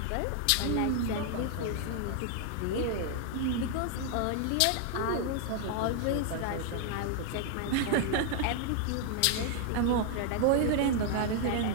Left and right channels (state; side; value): different; both; correlation 0.00